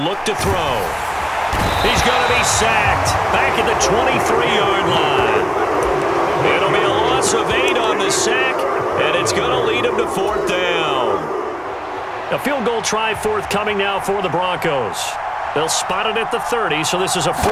to throw. He's going to be sacked back at the 23-yard line. It'll be a loss of 8 on the sack, and it's going to lead him to 4th down. A field goal try forthcoming now for the Broncos. They'll spot it at the 30, so this is a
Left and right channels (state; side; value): identical; both; correlation 1.00